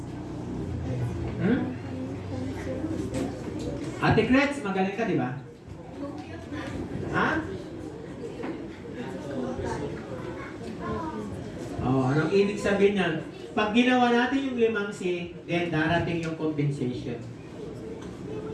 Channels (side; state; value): both; identical; correlation 1.00